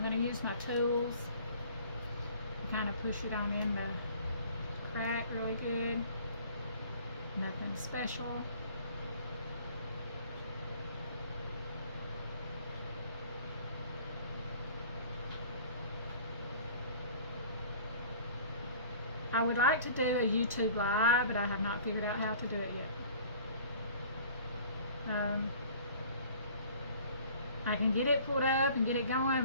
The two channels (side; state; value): both; inverted; correlation -0.49